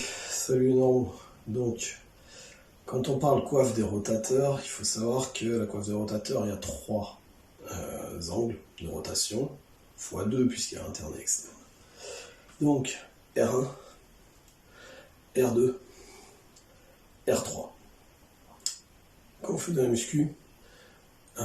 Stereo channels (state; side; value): identical; both; correlation 1.00